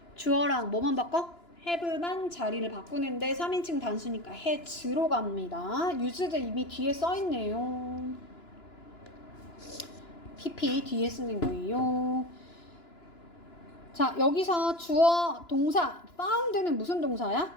주어랑 뭐만 바꿔? have만 자리를 바꾸는데 3인칭 단수니까 has로 갑니다. used 이미 뒤에 써있네요. pp 뒤에 쓰는 거예요. 자, 여기서 주어 동사 found는 무슨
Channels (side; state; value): right; late; 2.9 ms